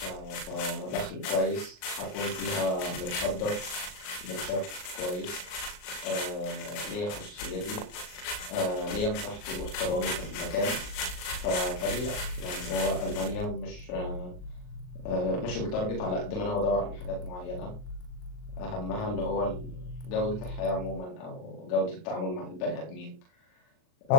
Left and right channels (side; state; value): right; late; 39 ms